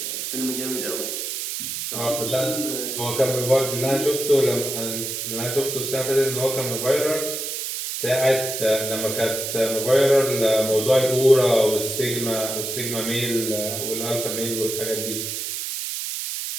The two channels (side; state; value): right; noise; hiss, 4 dB below the sound